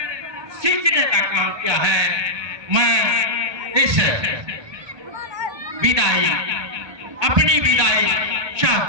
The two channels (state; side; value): late; left; 1.2 ms